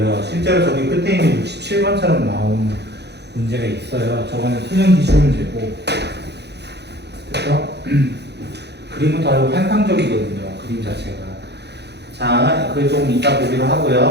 실제로 저기 끝에 있는 67번처럼 나온 문제가 있어요. 저거는 수능 기출 문제고. 그래서 그림은 더 환상적이거든요. 그림 자체가. 자, 그걸 조금 이따 보기로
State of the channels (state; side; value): late; left; 0.49 ms